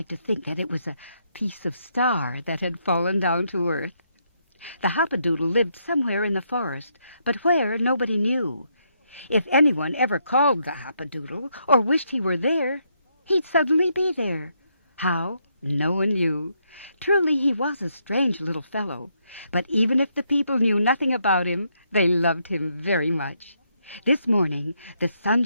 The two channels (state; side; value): inverted; both; correlation -0.76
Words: to think that it was a piece of star that had fallen down to earth. The Hopper Doodle lived somewhere in the forest, but where nobody knew. If anyone ever called the Hopper Doodle or wished he were there, he'd suddenly be there. How? No one knew. Truly, he was a strange little fellow, but even if the people knew nothing about him, they loved him very much. This morning, the sun